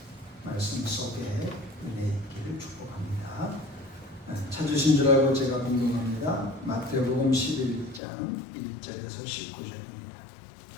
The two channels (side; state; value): right; drops out; at 8.0 s